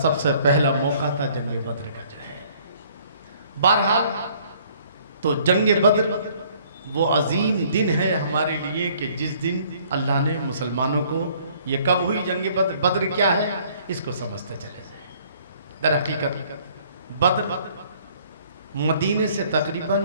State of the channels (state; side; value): inverted; both; correlation -0.59